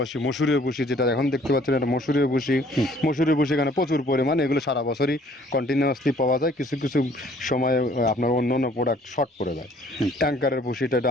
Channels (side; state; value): both; normal; correlation 0.58